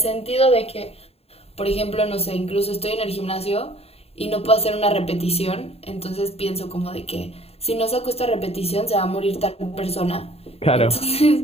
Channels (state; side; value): late; right; 0.29 ms